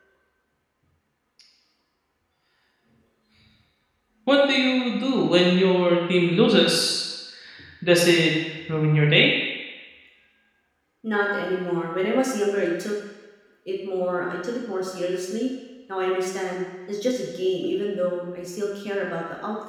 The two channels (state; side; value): identical; both; correlation 1.00